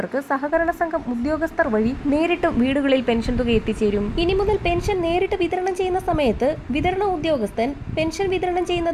സഹകരണ സംഘം ഉദ്യോഗസ്ഥർ വഴി നേരിട്ടും വീടുകളിൽ പെൻഷൻ തുക എത്തിച്ചേരും. ഇനി മുതൽ പെൻഷൻ നേരിട്ട് വിതരണം ചെയ്യുന്ന സമയത്ത് വിതരണ ഉദ്യോഗസ്ഥൻ പെൻഷൻ വിതരണം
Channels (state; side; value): identical; both; correlation 1.00